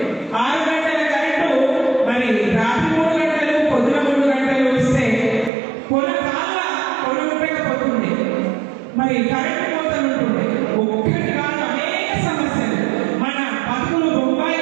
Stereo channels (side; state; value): left; drops out; at 5.5 s